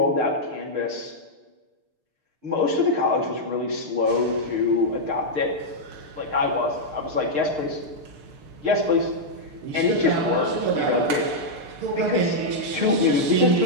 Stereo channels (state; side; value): late; left; 6.6 ms